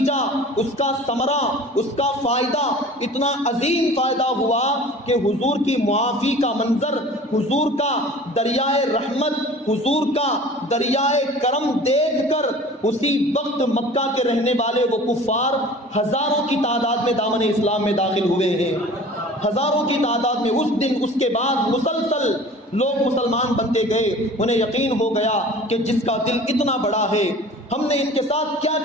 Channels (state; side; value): normal; both; correlation 0.43